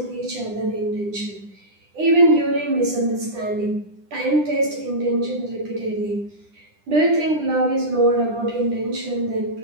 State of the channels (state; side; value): late; left; 9.9 ms